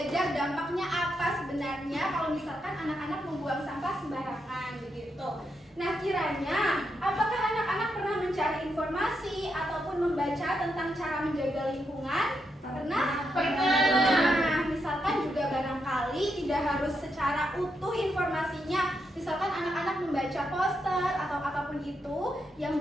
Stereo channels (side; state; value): both; normal; correlation 0.82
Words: dampaknya apa sebenarnya kalau misalkan anak-anak membuang sampah sembarangan begitu. Nah, kiranya apakah anak-anak pernah mencari informasi ataupun membaca tentang cara menjaga lingkungan? Pernah? Pernah. Nah, misalkan juga barangkali tidak harus secara utuh informasinya. Misalkan anak-anak membaca poster atau apapun itu yang